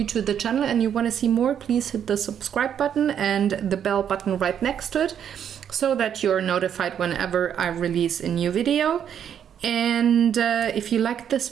to the channel and you want to see more, please hit the subscribe button and the bell button right next to it so that you're notified whenever I release a new video. And if you liked this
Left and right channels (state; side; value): quieter; left; 8.8 dB